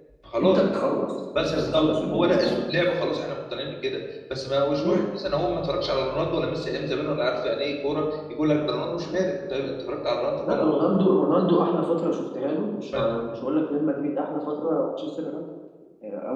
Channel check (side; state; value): both; identical; correlation 1.00